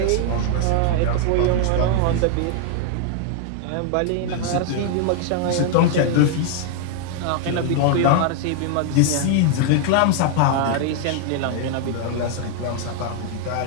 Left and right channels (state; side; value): different; both; correlation 0.00